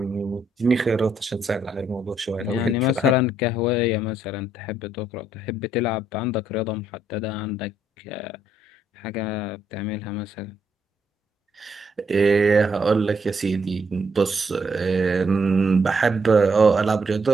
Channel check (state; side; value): normal; both; correlation 0.73